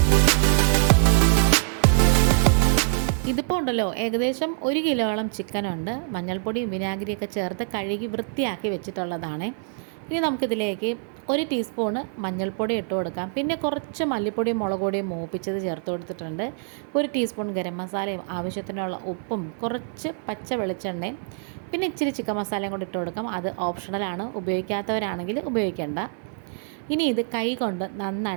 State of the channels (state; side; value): silent; left; 55 dB below the other